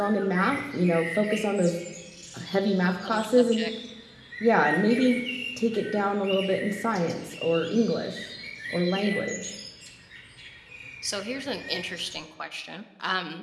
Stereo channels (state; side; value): identical; both; correlation 1.00